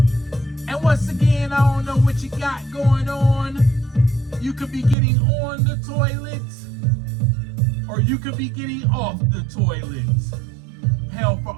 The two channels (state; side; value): drops out; left; at 5.0 s